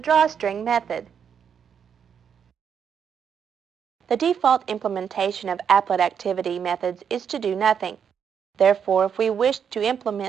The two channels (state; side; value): quieter; left; 7.6 dB